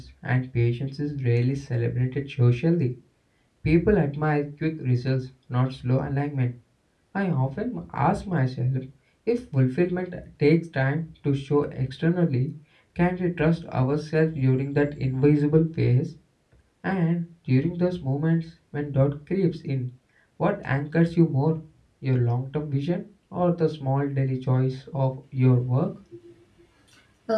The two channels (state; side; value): identical; both; correlation 1.00